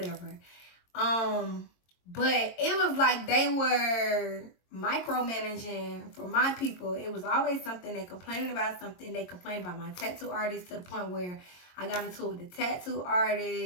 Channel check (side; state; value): right; late; 22 ms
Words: But it was like they were micromanaging for my people. It was always something. They complained about something. They complained about my tattoo artist to the point where I got into it with the tattoo